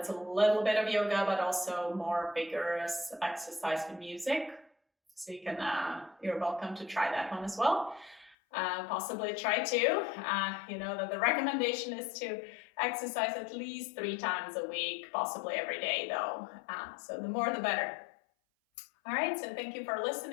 a little bit of yoga, but also more vigorous exercise with music. So you can, you're welcome to try that one as well. Possibly try two. You know that the recommendation is to exercise at least 3 times a week, possibly every day though. So the more the better. All right, so thank you for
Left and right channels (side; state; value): right; drops out; at 8.3 s